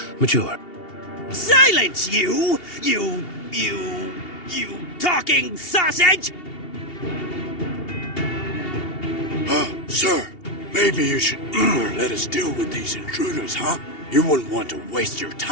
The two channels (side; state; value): right; late; 2.8 ms